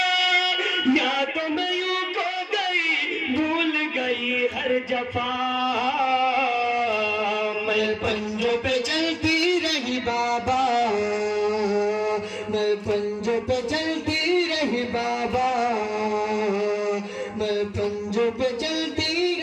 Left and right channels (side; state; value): both; identical; correlation 1.00